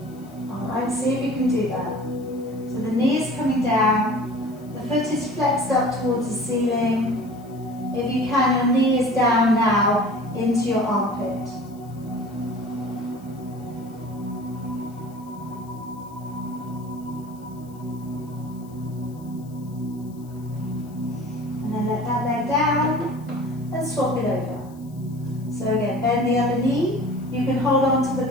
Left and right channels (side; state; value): left; noise; hiss, 27 dB below the sound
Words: Alright, see if you can do that. So the knee is coming down, the foot is flexed up towards the ceiling. If you can, your knee is down now into your armpit. And then let that leg down and swap it over. So again, bend the other knee. You can hold on to